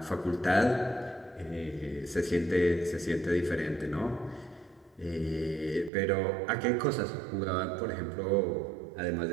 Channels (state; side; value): drops out; left; at 5.9 s